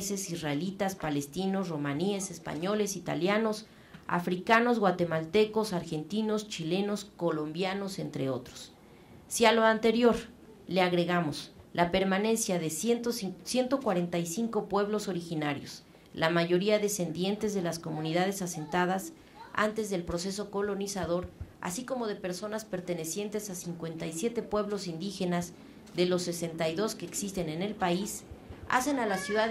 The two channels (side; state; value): both; identical; correlation 1.00